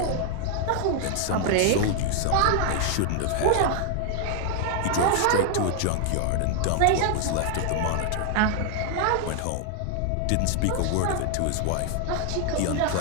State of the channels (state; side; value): different; both; correlation 0.00